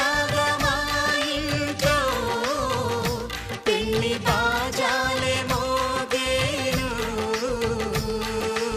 మా ఇంట్లో పెళ్లి బాజాలే మోగేను.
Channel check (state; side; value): identical; both; correlation 1.00